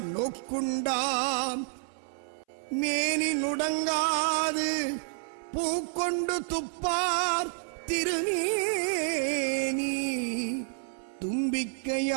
நோக்குண்டாம் மேனி நுடங்காது பூக்கொண்டு துப்பார் திருநேனி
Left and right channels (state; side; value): silent; left; 58 dB below the other